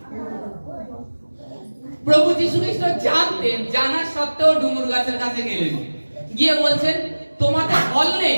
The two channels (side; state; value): both; inverted; correlation -1.00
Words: প্রভু যীশু খ্রিস্ট জানতেন, জানা সত্ত্বেও ডুমুর গাছের কাছে গেলেন, গিয়ে বলছেন, তোমাদের ফল নেই,